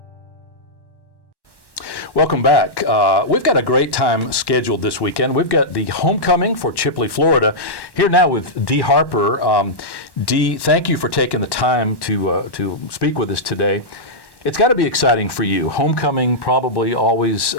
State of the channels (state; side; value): late; right; 1.1 ms